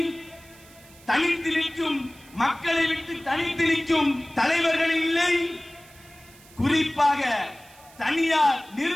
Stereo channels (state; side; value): noise; right; hiss, 24 dB below the sound